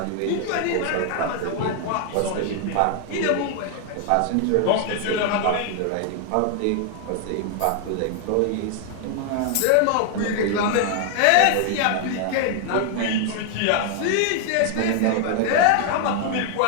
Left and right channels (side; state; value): both; different; correlation 0.00